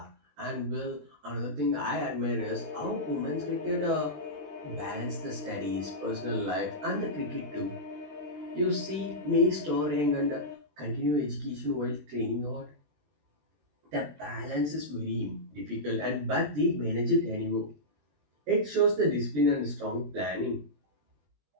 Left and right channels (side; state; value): left; late; 20 ms